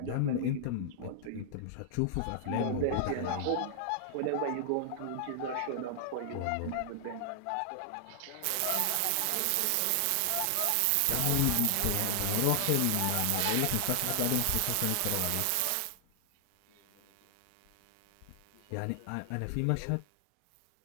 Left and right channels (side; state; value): both; different; correlation 0.00